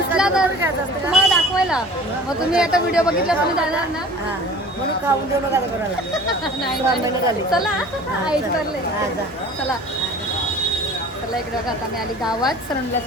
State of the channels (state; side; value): normal; both; correlation 0.44